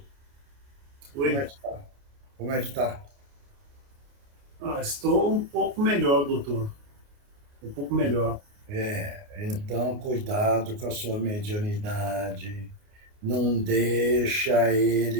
como é que está? Como é que está? Estou um pouco melhor, doutor. Um pouco melhor. Então cuidado com a sua mediunidade. Não deixa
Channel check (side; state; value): left; late; 29 ms